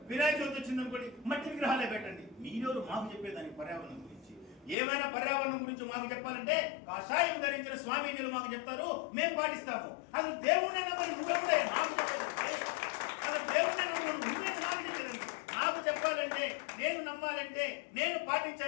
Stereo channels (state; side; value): drops out; right; at 4.8 s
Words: వినాయక చవితి వచ్చిందనుకోండి మట్టి విగ్రహాలే పెట్టండి. మీరెవరు మాకు చెప్పేదానికి పర్యావరణం గురించి? ఏమైనా పర్యావరణం గురించి మాకు చెప్పాలంటే కాషాయం ధరించిన స్వామీజీలు మాకు చెప్తారు, మేము పాటిస్తాము. అసలు దేవుడిని నమ్మని నువ్వెప్పుడే మాకు చెప్పేదంటే, అసలు దేవుడిని నమ్మని నువ్వే నాకు చెప్పేదండి. నాకు చెప్పాలంటే, నేను నమ్మాలంటే, నేను